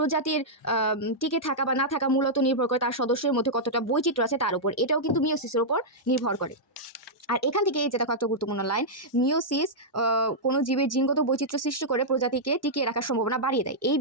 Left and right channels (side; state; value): both; normal; correlation -0.08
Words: টিকে থাকা বা না থাকা মূলত নির্ভর করে তার সদস্যের মধ্যে কতটা বৈচিত্র্য আছে তার উপর। এটাও কিন্তু মিওসিসের উপর নির্ভর করে। আর এখান থেকে এই যে দেখো একটা গুরুত্বপূর্ণ লাইন, মিওসিস কোনো জীবের জিনগত বৈচিত্র্য সৃষ্টি করে প্রজাতিকে টিকিয়ে রাখার সম্ভাবনা বাড়িয়ে দেয়। এই